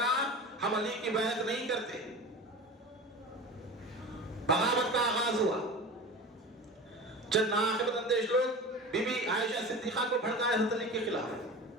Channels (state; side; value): normal; both; correlation 0.32